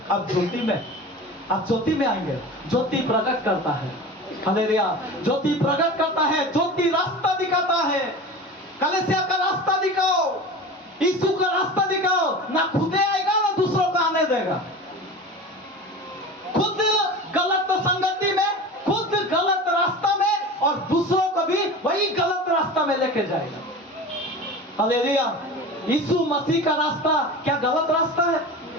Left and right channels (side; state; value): both; normal; correlation 0.33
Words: अब ज्योति में, आप ज्योति में आएंगे। ज्योति प्रकट करता है। हालेलुया। ज्योति प्रकट करता है, ज्योति रास्ता दिखाता है। कलीसिया का रास्ता दिखाओ, यीशु का रास्ता दिखाओ। ना खुदे आएगा ना दूसरों को आने देगा। खुद गलत संगति में, खुद गलत रास्ता में, और दूसरों को भी वही गलत रास्ता में लेके जाएगा। हालेलुया। यीशु मसीह का रास्ता क्या गलत रास्ता है?